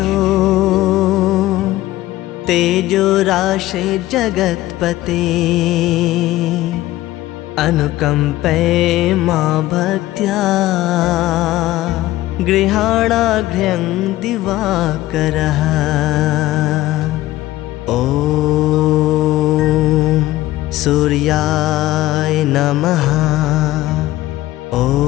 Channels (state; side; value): quieter; right; 16.2 dB